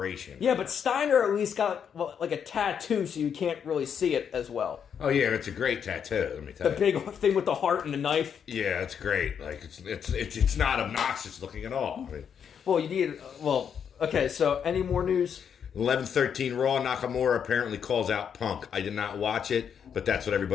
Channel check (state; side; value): quieter; right; 7.7 dB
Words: Yeah, but Steiner at least got like a tattoo, so you can't really see it as well. Oh yeah, it's a great tattoo. Let me tell you. The big thing with the heart and the knife. Yeah, it's great. Like it's not obnoxious looking at all. I mean, well, you need. Well, okay. So, any more news? 11:13 Raw. Nakamura apparently calls out Punk. I did not watch it, but that's what